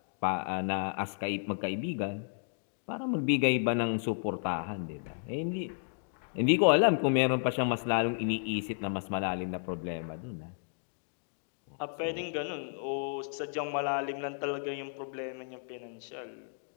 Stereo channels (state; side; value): silent; right; digital silence